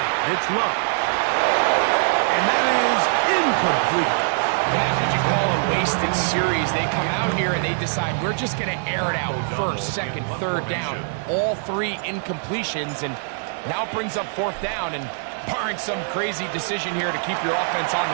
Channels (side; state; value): left; silent; digital silence